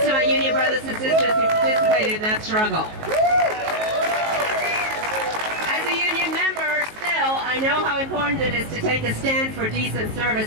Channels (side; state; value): left; late; 19 ms